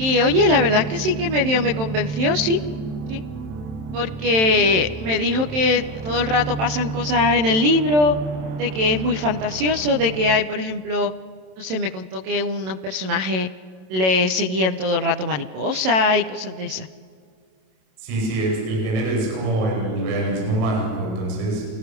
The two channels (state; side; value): late; left; 27 ms